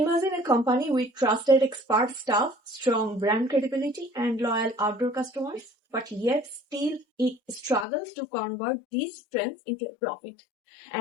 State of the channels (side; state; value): right; drops out; at 7.9 s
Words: a company with trusted expert staff, strong brand credibility, and loyal outdoor customers, but yet still it struggles to convert these strengths into a profit.